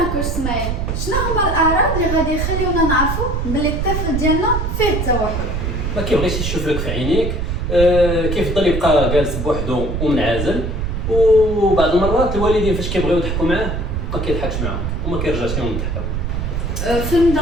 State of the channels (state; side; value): noise; right; rumble, 2 dB below the sound